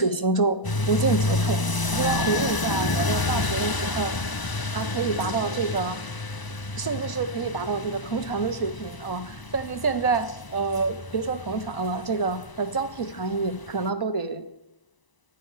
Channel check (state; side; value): late; right; 1.0 ms